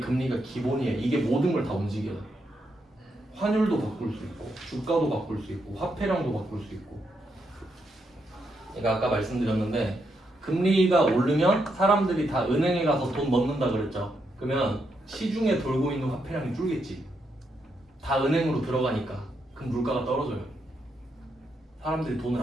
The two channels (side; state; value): both; normal; correlation 0.80